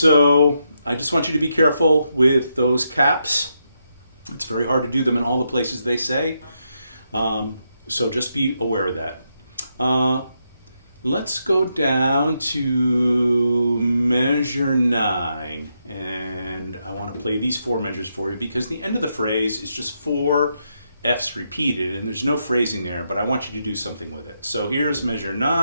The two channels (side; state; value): both; inverted; correlation -0.81